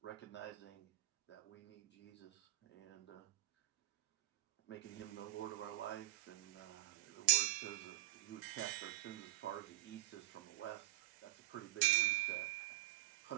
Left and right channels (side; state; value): left; quieter; 18.2 dB